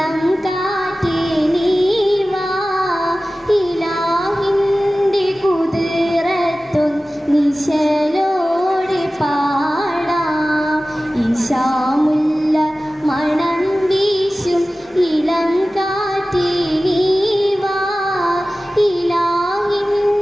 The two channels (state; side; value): normal; both; correlation 0.96